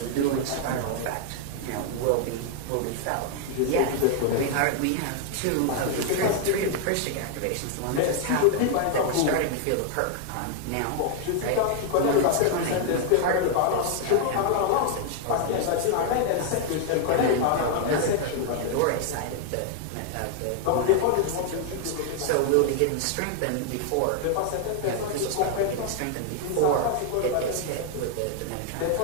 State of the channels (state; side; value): different; both; correlation 0.00